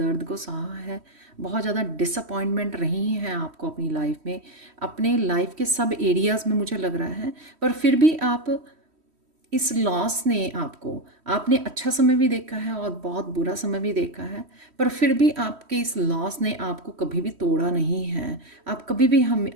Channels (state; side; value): late; left; 3.1 ms